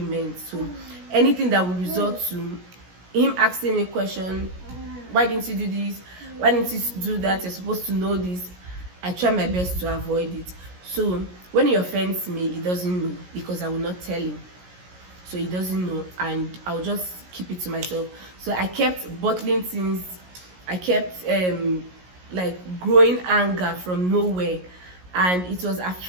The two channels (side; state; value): left; late; 17 ms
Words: So anything that will result to him asking me a question, why didn't you do this? Why didn't you do that? You're supposed to know this. I try my best to avoid it. So when he offends me, he doesn't know because I will not tell him. So he doesn't know, and I'll just keep it to myself. So I kept bottling things. I kept like growing anger from nowhere, and it was